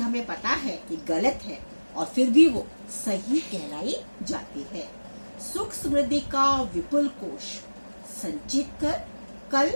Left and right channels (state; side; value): inverted; both; correlation -1.00